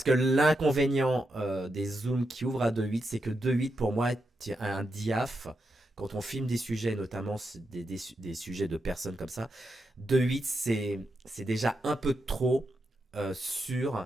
que l'inconvénient des zooms qui ouvrent à 2.8, c'est que 2.8 pour moi est un diaph. Quand on filme des sujets, notamment des sujets de personnes comme ça, 2.8 c'est déjà un peu trop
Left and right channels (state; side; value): normal; both; correlation 0.85